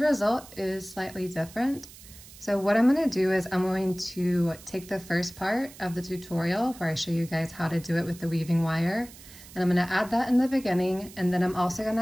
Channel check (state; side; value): noise; right; hiss, 19 dB below the sound